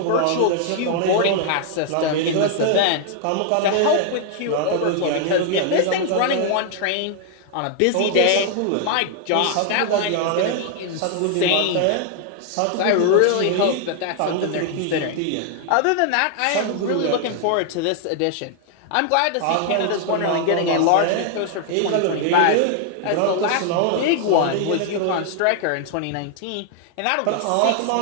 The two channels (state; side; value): different; both; correlation 0.00